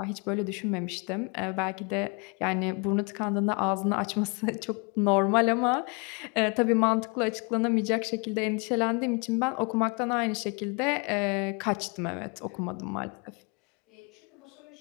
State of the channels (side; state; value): right; quieter; 32.2 dB